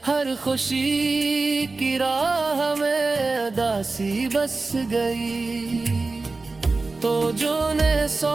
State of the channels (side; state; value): left; quieter; 3.7 dB